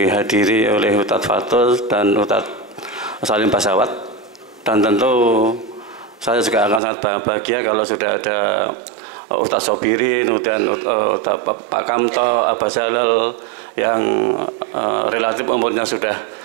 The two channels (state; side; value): drops out; left; at 6.8 s